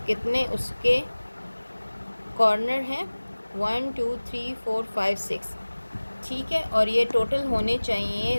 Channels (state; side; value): inverted; both; correlation -1.00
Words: कितने उसके कॉर्नर हैं, 1 2 3 4 5 6, ठीक है। और ये टोटल होने चाहिए